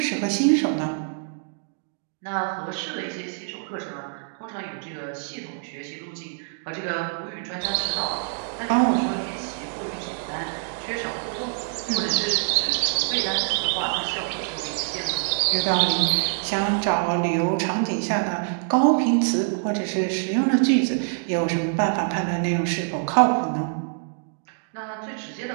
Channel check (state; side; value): silent; left; digital silence